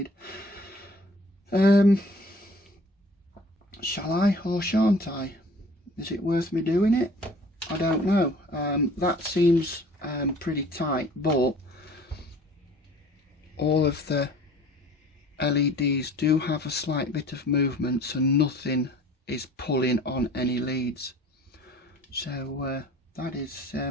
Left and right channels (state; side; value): normal; both; correlation 0.49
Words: Shall I or shan't I? Is it worth me doing it? I don't know. That seems pretty tight, but all of the LEDs do have a slight bit of movement, so nothing is pulling on any leads, so that is